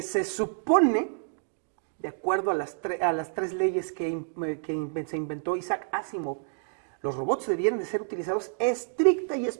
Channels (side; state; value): left; silent; digital silence